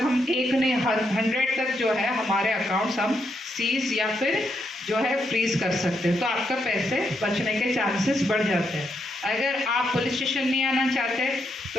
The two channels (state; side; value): normal; both; correlation 0.79